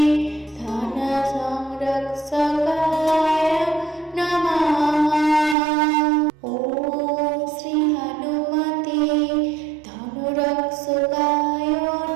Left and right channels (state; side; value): drops out; left; at 5.6 s